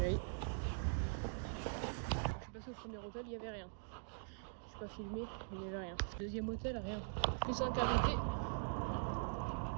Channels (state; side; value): silent; left; digital silence